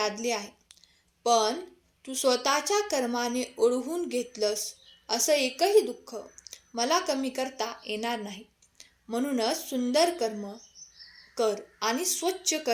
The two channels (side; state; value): both; identical; correlation 1.00